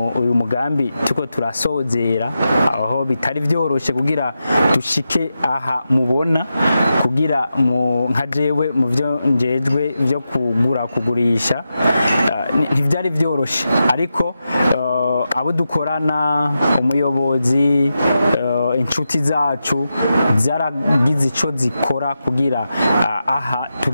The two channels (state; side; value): inverted; both; correlation -0.89